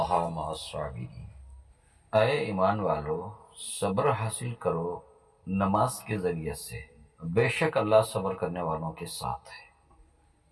مع الصابرین، اے ایمان والو صبر حاصل کرو نماز کے ذریعے سے، بے شک اللہ صبر کرنے والوں کے ساتھ ہے۔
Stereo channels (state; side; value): identical; both; correlation 1.00